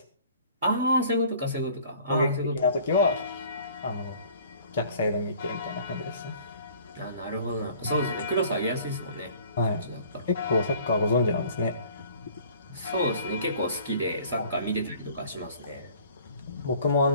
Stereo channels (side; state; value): both; inverted; correlation -0.51